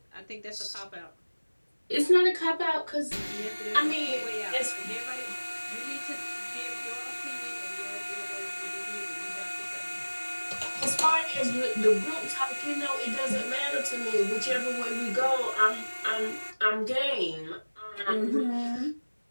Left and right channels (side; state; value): both; inverted; correlation -1.00